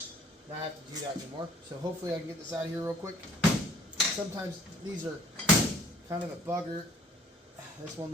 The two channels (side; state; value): both; normal; correlation 0.56